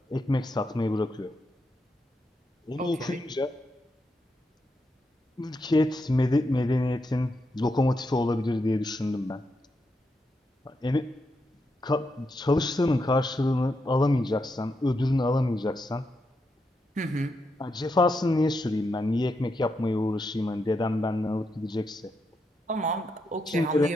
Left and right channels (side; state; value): both; normal; correlation 0.83